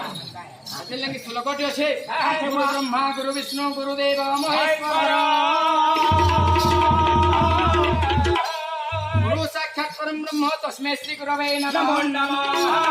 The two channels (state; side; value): identical; both; correlation 1.00